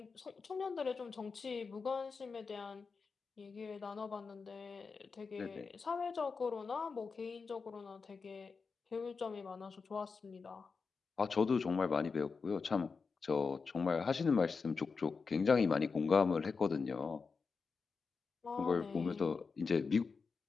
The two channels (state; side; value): quieter; right; 4.9 dB